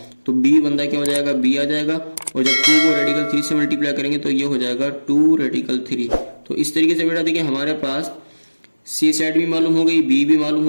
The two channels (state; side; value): inverted; both; correlation -1.00